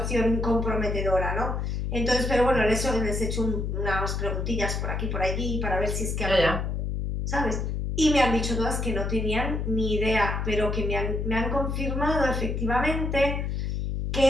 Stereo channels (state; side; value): noise; left; hum, 1 dB below the sound